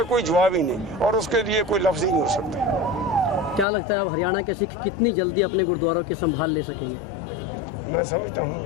कोई जवाब ही नहीं और उसके लिए कोई लफ्ज़ ही नहीं हो सकता। क्या लगता है अब हरियाणा के सिख कितनी जल्दी अपने गुरुद्वारों की संभाल ले सकेंगे? मैं समझता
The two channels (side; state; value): right; drops out; at 3.7 s